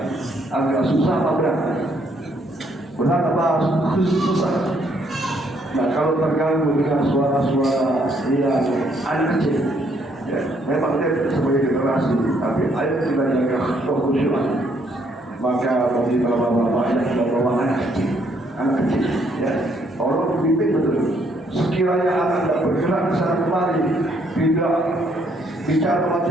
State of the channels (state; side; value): normal; both; correlation 0.70